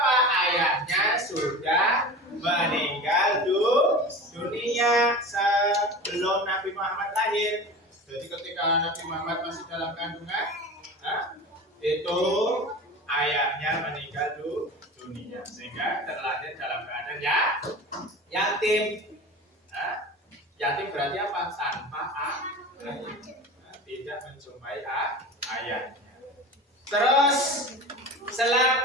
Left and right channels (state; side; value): normal; both; correlation 0.33